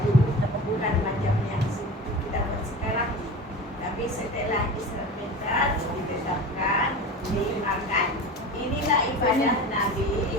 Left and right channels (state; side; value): normal; both; correlation 0.32